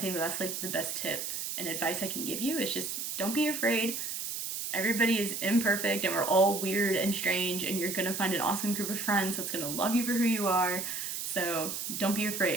think that's like the best tip and advice I can give you is just don't be afraid. Everybody is imperfect and we're all weird and strange, and you're gonna find an awesome group of friends that's gonna love you for who you are. So don't be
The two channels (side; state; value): right; noise; hiss, 4 dB below the sound